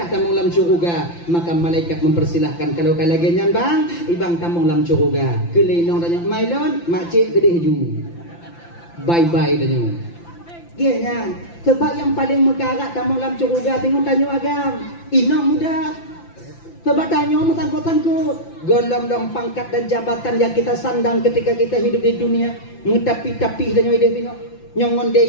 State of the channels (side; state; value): right; late; 5.9 ms